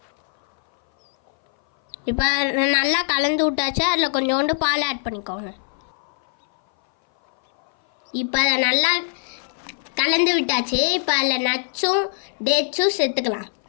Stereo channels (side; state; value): right; silent; 60 dB below the other